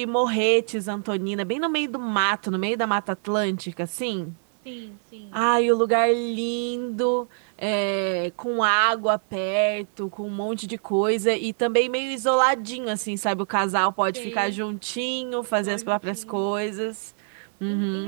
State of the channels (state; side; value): silent; left; 62 dB below the other